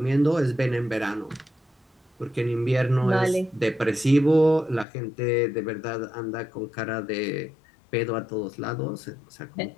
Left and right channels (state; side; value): drops out; right; at 4.9 s